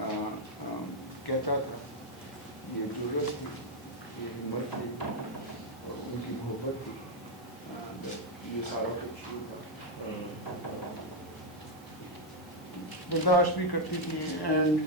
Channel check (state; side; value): normal; both; correlation 0.01